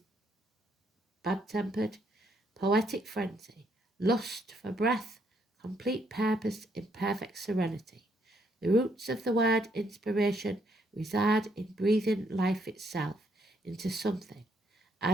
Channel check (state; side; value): normal; both; correlation 0.72